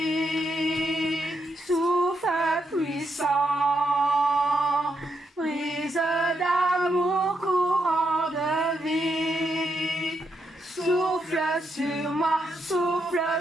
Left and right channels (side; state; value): both; normal; correlation 0.80